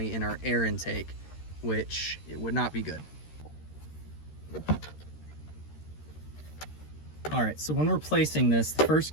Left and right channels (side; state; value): right; late; 13 ms